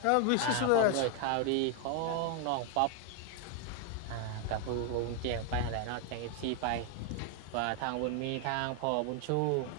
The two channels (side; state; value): both; different; correlation 0.00